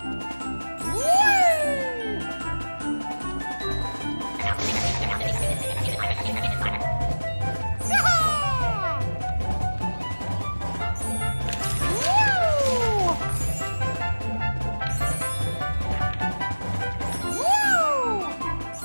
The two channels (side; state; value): both; inverted; correlation -1.00